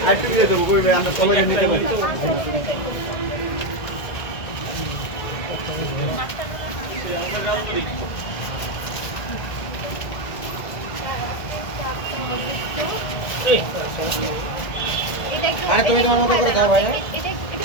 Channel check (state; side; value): late; right; 1.6 ms